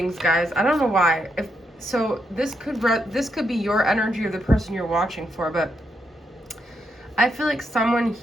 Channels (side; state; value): both; normal; correlation 0.80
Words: guys. I don't know why. So this could be your energy or the person you're watching for, but I feel like someone